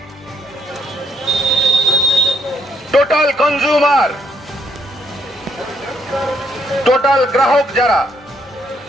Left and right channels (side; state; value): both; normal; correlation 0.74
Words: total consumer, total গ্রাহক যারা